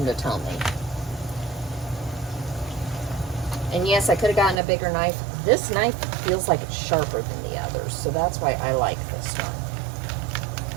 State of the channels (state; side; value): drops out; left; at 4.6 s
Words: to tell me. And yes, I could have gotten a bigger knife. This knife feels like it's sharper than the others, so that's why I like this one.